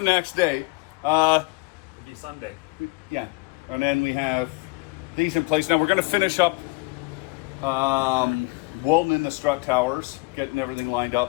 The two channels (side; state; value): right; quieter; 26.7 dB